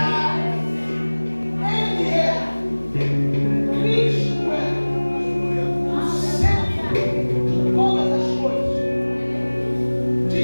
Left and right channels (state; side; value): inverted; both; correlation -1.00